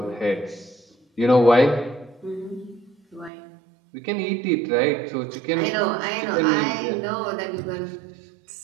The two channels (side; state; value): left; drops out; at 3.3 s